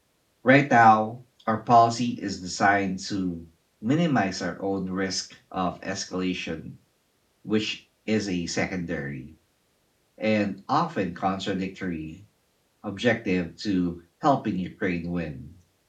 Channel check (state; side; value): identical; both; correlation 1.00